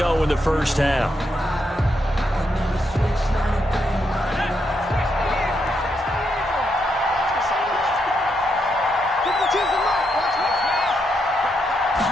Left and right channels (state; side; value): normal; both; correlation 0.80